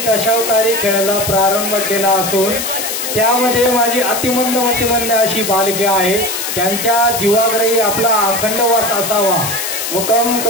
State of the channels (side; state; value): left; noise; hiss, 4 dB below the sound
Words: दशावतारी खेळायला प्रारंभ केला असून त्यामध्ये माझी अतिमंद अशी बालके आहे, त्यांच्या जीवाग्रही आपला अखंड वास असावा। मुखम